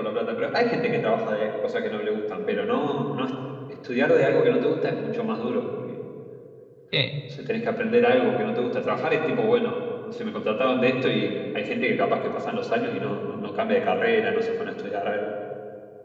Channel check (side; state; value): both; identical; correlation 1.00